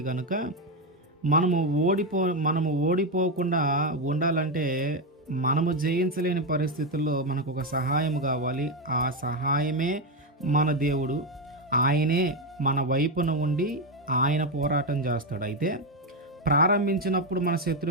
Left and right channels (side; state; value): both; normal; correlation 0.08